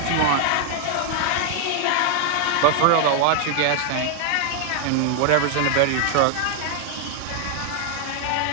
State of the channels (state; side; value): different; both; correlation 0.00